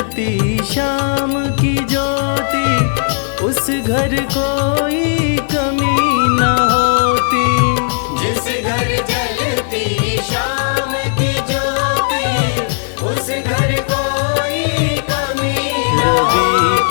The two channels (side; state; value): right; silent; digital silence